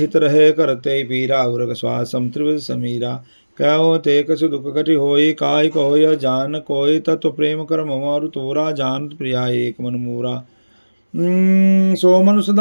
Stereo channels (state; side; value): inverted; both; correlation -1.00